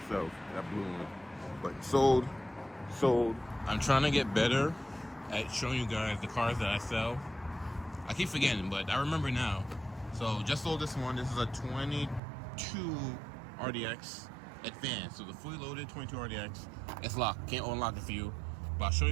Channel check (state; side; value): drops out; left; at 12.2 s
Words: that blue one. But sold. I'm trying to get better at showing you guys the cars that I sell. I keep forgetting, but I remember now. So just sold this one. This is a 22 RDX Advanced. So the fully loaded 22 RDX. It's locked. Can't unlock it for you. But I'll show